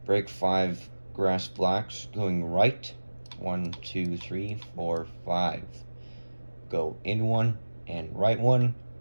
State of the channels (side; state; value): both; inverted; correlation -1.00